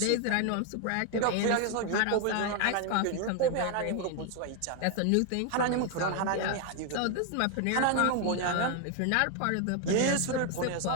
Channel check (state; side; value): different; both; correlation 0.01